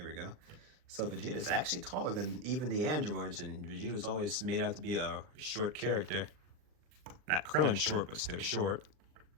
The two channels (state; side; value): late; left; 39 ms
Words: we go. So Vegeta is actually taller than even the androids, and Vegeta was always made out to be a short character. Not Krillin short, but still short.